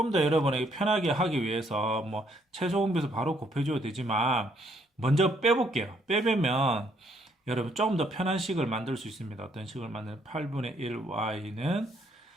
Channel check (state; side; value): normal; both; correlation 0.69